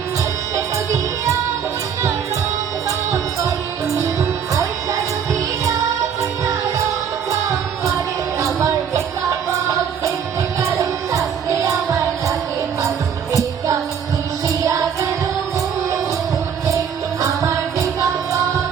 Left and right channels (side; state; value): left; quieter; 7.7 dB